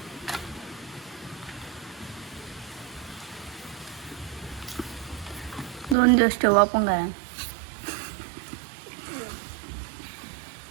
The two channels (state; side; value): drops out; left; at 6.0 s